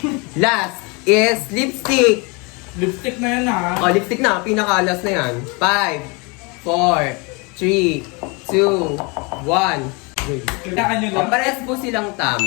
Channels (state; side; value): quieter; right; 29.6 dB